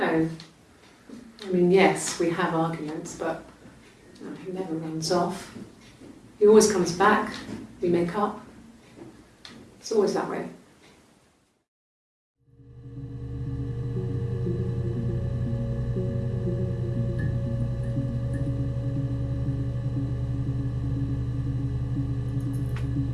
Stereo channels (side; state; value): both; identical; correlation 1.00